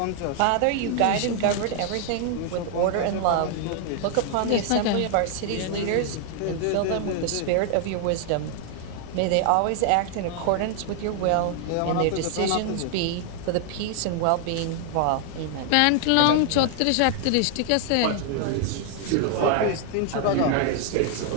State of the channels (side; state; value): both; different; correlation 0.00